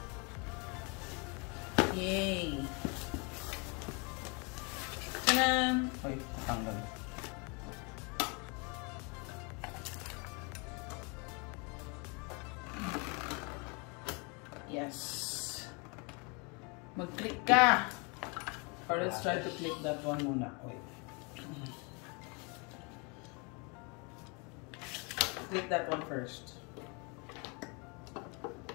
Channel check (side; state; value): right; quieter; 31.4 dB